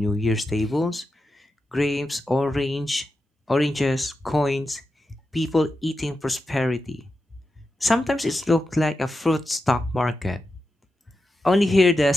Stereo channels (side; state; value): both; normal; correlation 0.89